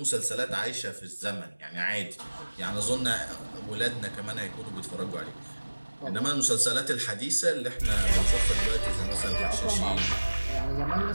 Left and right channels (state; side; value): inverted; both; correlation -1.00